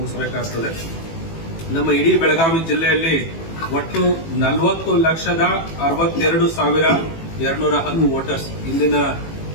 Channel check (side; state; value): right; late; 18 ms